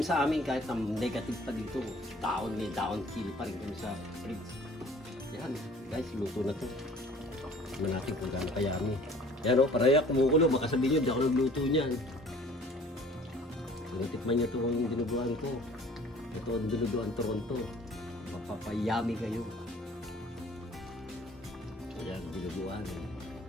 sa amin, kahit na negative pa dito, may dahon sili pa rin kami sa fridge. Yan guys, luto na to. Tignan natin kung gaano kayami. Yan o, paraya kumukulo, baka sabihin nyo di ako nagluto niyan. Natikman nyo ito yung dinuguan ko. Ito ang dinuguan Toronto. Mapapayami kayo. Ayan, dinuguan.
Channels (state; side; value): normal; both; correlation 0.51